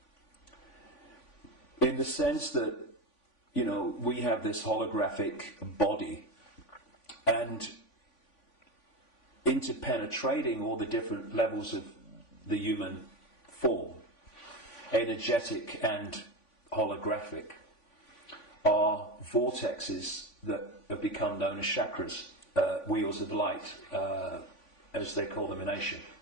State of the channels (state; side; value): late; right; 3.5 ms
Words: in the sense that, you know, we have this holographic body, and interpenetrating all the different levels of the human form, energetic and holographic, are vortexes that have become known as chakras, wheels of light, as they call them in Asia.